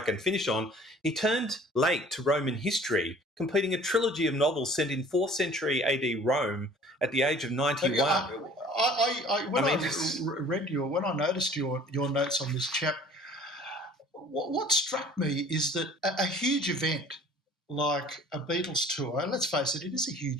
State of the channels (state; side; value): normal; both; correlation 0.50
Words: finish on, he turned late to Roman history, completing a trilogy of novels set in 4th century AD Rome at the age of 91. When I noticed your notes on this chap, what struck me is that a huge event like a Beatles tour, and let's face it, it is a